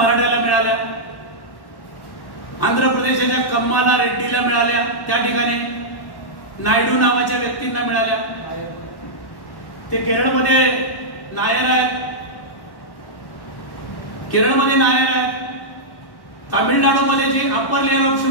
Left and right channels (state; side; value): late; right; 1.1 ms